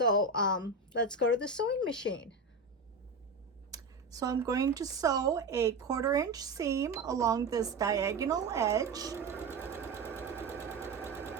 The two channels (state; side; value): quieter; left; 3.6 dB